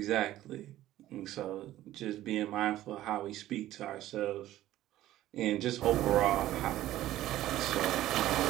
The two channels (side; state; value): left; quieter; 14.3 dB